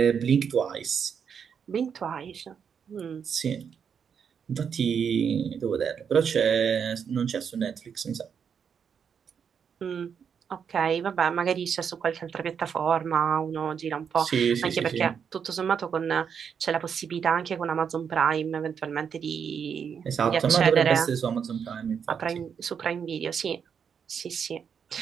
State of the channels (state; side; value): quieter; left; 7.1 dB